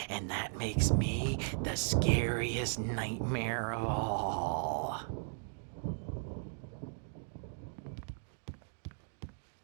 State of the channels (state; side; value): silent; left; digital silence